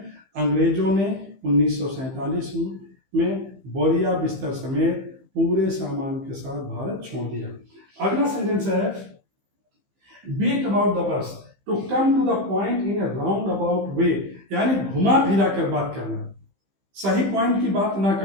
अंग्रेजों ने 1947 में बोरिया बिस्तर समेत पूरे सामान के साथ भारत छोड़ दिया। अगला सेंटेंस है beat about the bush to come to the point in a roundabout way, यानी घुमा फिरा कर बात करना, सही पॉइंट की बात ना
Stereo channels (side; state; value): left; late; 15 ms